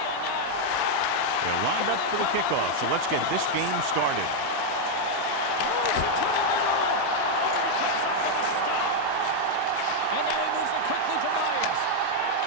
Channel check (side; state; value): both; different; correlation 0.00